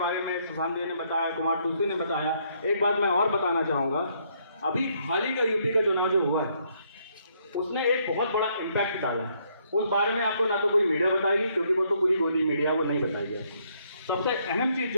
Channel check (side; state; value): both; inverted; correlation -0.71